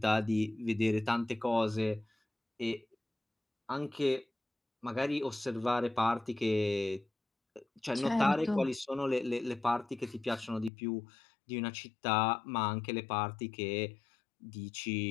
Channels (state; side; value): drops out; right; at 10.7 s